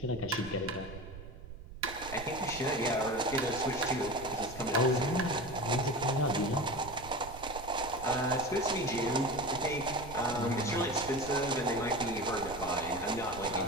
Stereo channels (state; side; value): noise; right; rumble, 14 dB below the sound